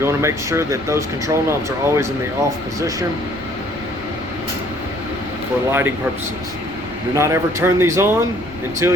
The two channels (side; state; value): right; noise; rumble, 19 dB below the sound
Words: want to make sure that those control knobs are always in the off position for lighting purposes. Do not ever turn these on until